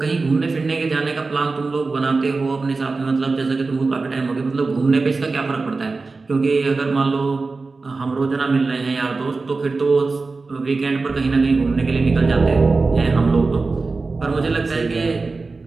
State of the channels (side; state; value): left; quieter; 3.9 dB